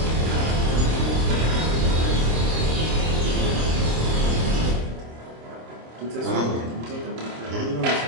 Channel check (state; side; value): late; left; 26 ms